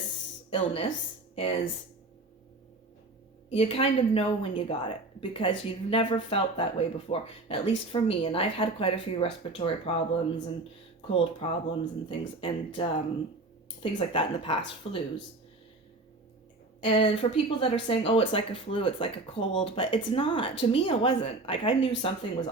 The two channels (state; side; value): quieter; left; 3.1 dB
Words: illness is you kind of know when you got it because you've never felt that way before, at least for me. And I've had quite a few respiratory problems and cold problems and things like that in the past, flus. And for people that are saying, oh, it's like a flu, it's like a cold, but it's not. To me, it wasn't. Like, I knew something was